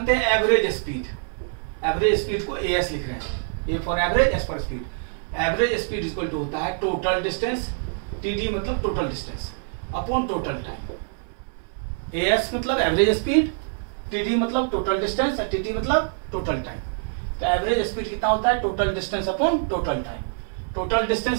हैं एवरेज स्पीड। एवरेज स्पीड को AS लिख रहे हैं, A for average, S for speed. Average speed equal to होता है टोटल डिस्टेंस, TD मतलब total distance, upon total time. AS मतलब एवरेज स्पीड, TD मतलब टोटल डिस्टेंस, TT मतलब टोटल टाइम। तो एवरेज स्पीड कितना होता है total distance upon total time. Total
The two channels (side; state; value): left; silent; 58 dB below the other